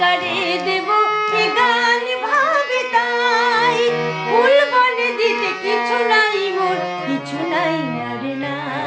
দেব এ গান ভাবে তাই, ফুল বলে দিতে কিছু নাই মোর, কিছু নাই আর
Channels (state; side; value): identical; both; correlation 1.00